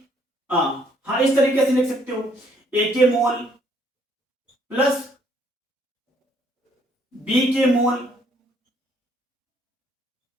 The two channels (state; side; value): normal; both; correlation 0.66